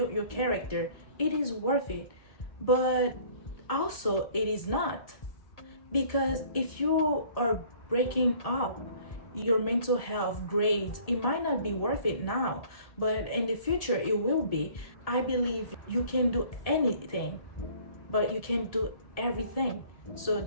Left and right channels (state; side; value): late; right; 1.7 ms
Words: your character, it is worth it. But also it is not, because if you are breaking up your mental health, grades, it might not be worth it now, but in the future it will be. I believe you can do anything, but you can't do everything. So